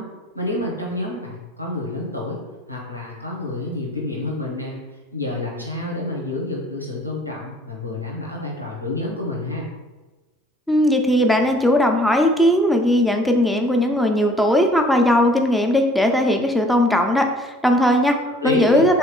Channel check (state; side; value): normal; both; correlation 0.56